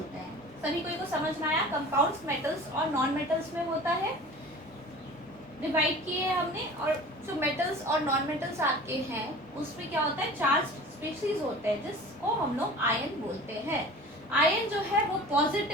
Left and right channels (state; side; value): normal; both; correlation 0.40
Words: हैं। सभी कोई को समझ में आया? कंपाउंड्स मेटल्स और नॉन मेटल्स में होता है, डिवाइड किए हैं हमने। और जो मेटल्स और नॉन मेटल्स आपके हैं उसमें क्या होता है? चार्ज स्पीशीज होते हैं जिसको हम लोग आयन बोलते हैं। आयन जो है वो